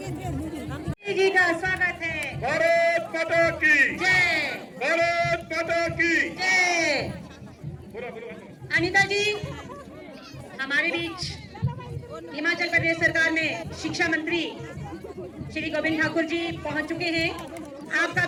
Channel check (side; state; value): both; identical; correlation 1.00